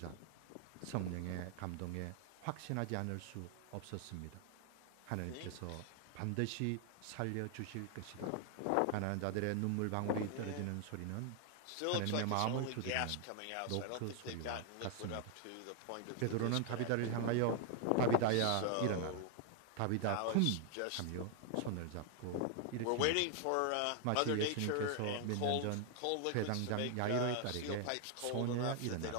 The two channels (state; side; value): different; both; correlation 0.00